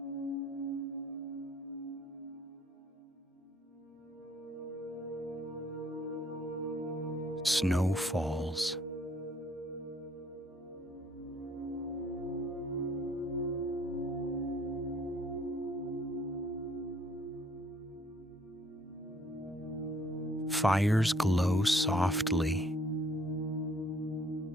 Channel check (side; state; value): both; normal; correlation 0.61